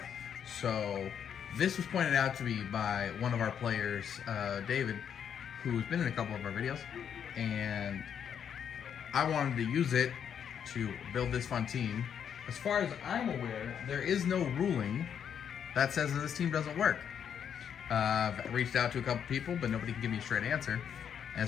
So this was pointed out to me by one of our players, David, who's been in a couple of our videos, and I wanted to use it to build this fun team. As far as I'm aware, there is no ruling that says that this team doesn't work. I've reached out to a couple people, but nobody can give me a straight answer.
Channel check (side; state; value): right; quieter; 8.2 dB